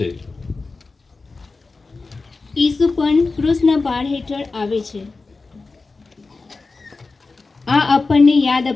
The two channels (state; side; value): quieter; right; 3.9 dB